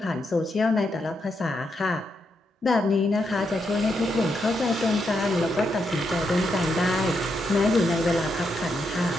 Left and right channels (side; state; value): both; normal; correlation 0.81